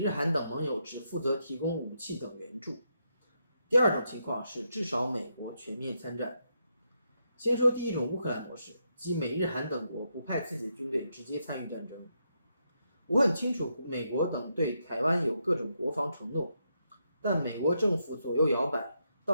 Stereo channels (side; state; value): both; inverted; correlation -0.81